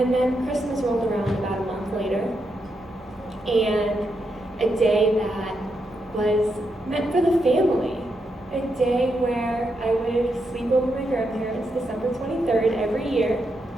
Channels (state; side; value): normal; both; correlation 0.83